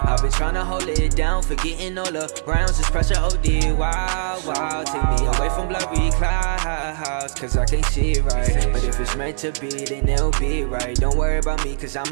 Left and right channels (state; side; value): silent; left; 65 dB below the other